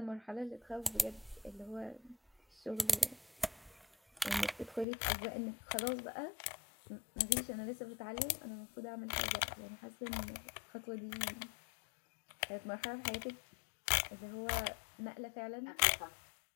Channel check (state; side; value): drops out; right; at 4.9 s